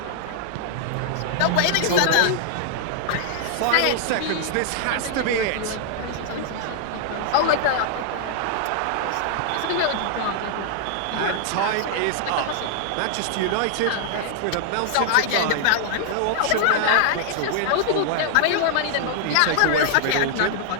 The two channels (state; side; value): different; both; correlation -0.01